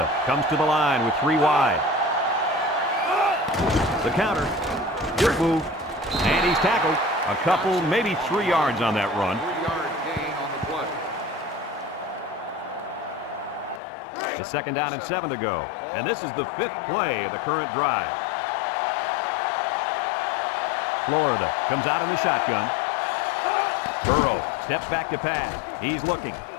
comes to the line with 3 wide. The counter. Good move. And he's tackled. A couple, maybe 3 yards on that run. 3-yard gain on the play. It's second down and 7 to go. And this is the 5th play of the current drive. Florida comes out in the shotgun. Burrow steps back to pass. He's looking.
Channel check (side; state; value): right; drops out; at 13.8 s